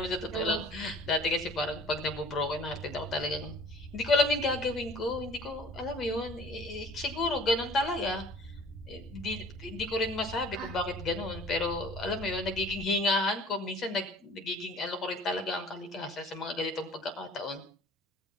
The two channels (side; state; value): both; normal; correlation 0.49